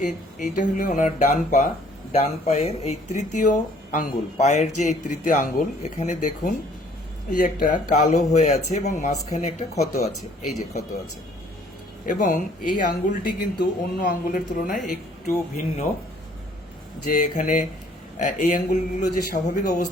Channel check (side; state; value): both; normal; correlation 0.59